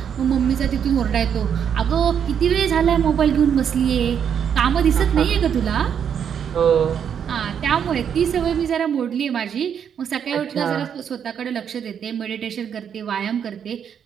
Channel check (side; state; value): left; quieter; 8.1 dB